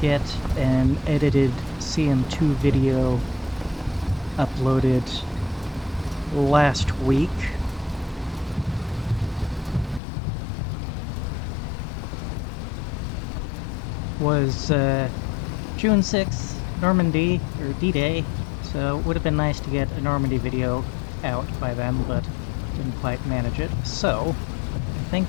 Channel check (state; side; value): drops out; right; at 10.0 s